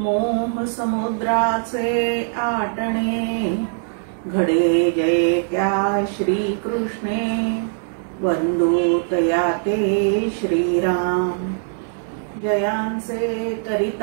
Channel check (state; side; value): silent; left; digital silence